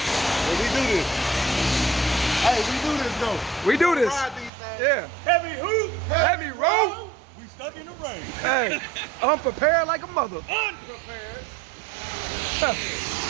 we do this. Hey, we do this though. We do this. Ride these things. Yeah. Heavy hoop. Heavy road. We stuck in the rain. Hey. Unprepared like a mother. Unprepared.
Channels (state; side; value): drops out; left; at 4.5 s